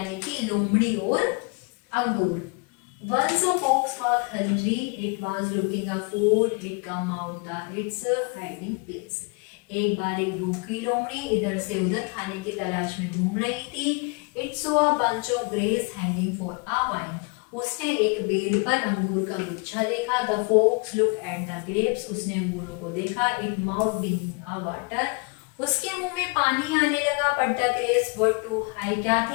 कि लोमड़ी और अंगूर। Once a fox was hungry, it was looking for food. It come out its hiding place. एक बार एक भूखी लोमड़ी इधर से उधर खाने की तलाश में घूम रही थी। It saw a bunch of grapes hanging for a while. उसने एक बेल पर अंगूर का गुच्छा देखा। The fox looked at the grapes. उसने अंगूरों को देखा। It mouth being a water. उसके मुंह में पानी आने लगा। But the grapes were too high. क्या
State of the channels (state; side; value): quieter; right; 32.9 dB